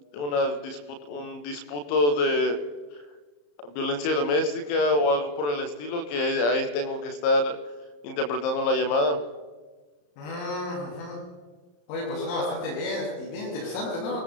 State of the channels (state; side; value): late; right; 34 ms